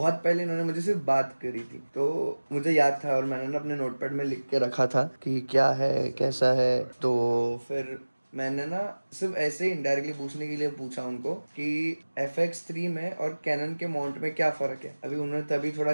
पहले इन्होंने मुझे सिर्फ बात करी थी, तो मुझे याद था और मैंने ना अपने नोटपैड में लिख के रखा था कि क्या है कैसा है। तो फिर मैंने ना सिर्फ ऐसे ही इनडायरेक्टली पूछने के लिए पूछा उनको कि FX3 में और कैनन के माउंट में क्या फ़र्क है। अभी उन्हें तभी थोड़ा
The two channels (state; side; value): inverted; both; correlation -1.00